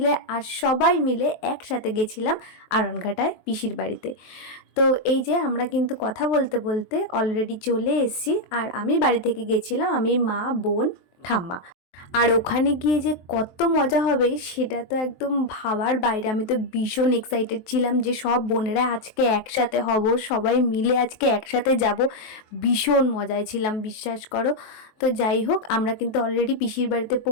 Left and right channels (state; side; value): late; right; 23 ms